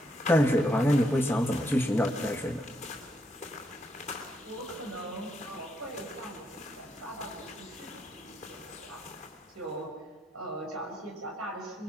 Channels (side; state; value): both; normal; correlation 0.78